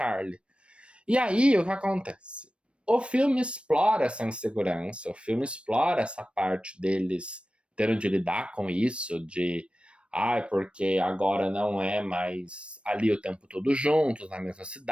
E aí, o que acontece? O filme explora essa insegurança, o filme explora essa parte deles tendo de lidar com isso, de porque agora não é mais ali o tempo todo juntos, na mesma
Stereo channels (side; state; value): left; late; 0.059 ms